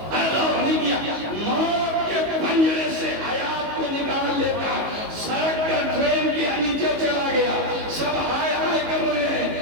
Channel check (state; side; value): late; left; 19 ms